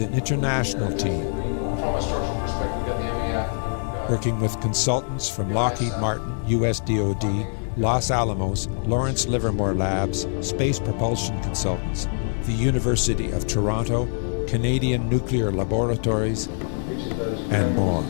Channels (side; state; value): right; silent; digital silence